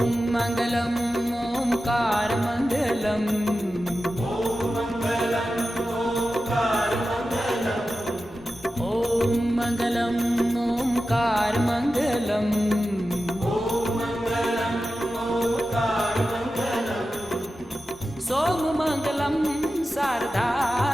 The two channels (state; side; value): normal; both; correlation 0.93